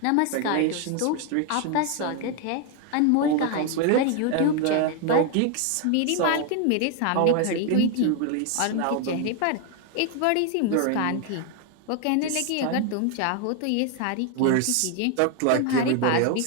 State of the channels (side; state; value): both; different; correlation 0.01